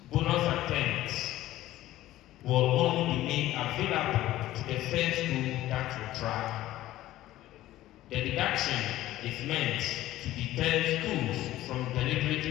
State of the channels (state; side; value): quieter; right; 15.0 dB